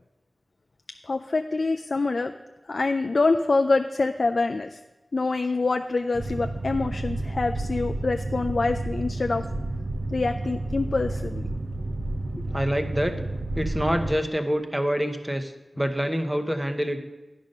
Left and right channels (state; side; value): normal; both; correlation 0.96